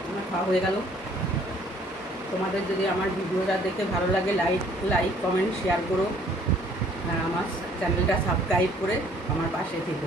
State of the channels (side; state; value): both; normal; correlation 0.59